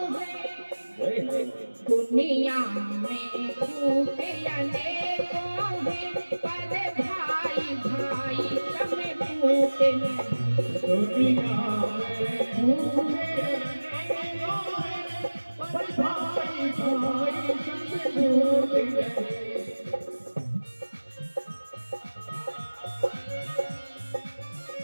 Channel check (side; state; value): both; inverted; correlation -1.00